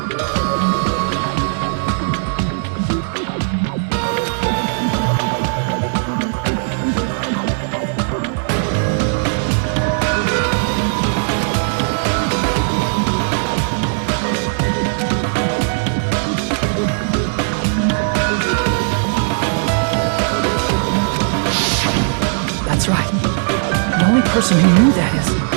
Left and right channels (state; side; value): silent; left; digital silence